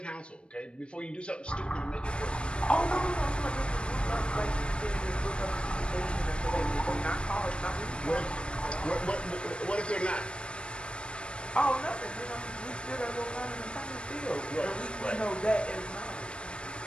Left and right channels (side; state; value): right; late; 0.056 ms